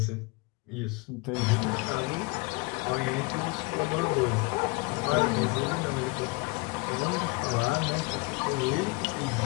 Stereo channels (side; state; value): right; quieter; 26.5 dB